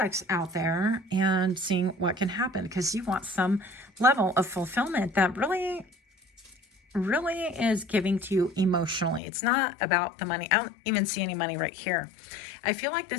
out there and seeing what can happen, because you want some level of fulfillment that really really is giving to you emotionally. It's not about the money. I don't even see any money right here. I feel like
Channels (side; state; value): right; drops out; at 9.2 s